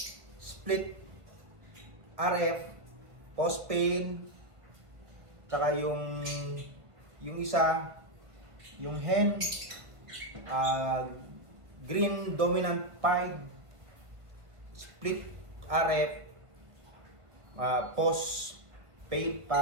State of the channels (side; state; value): left; late; 1.5 ms